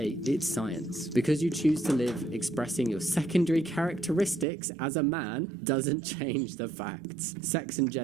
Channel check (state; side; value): drops out; left; at 4.5 s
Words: it's science. Because you choose to live expressing your secondary characteristics as a man doesn't change the facts. Sex and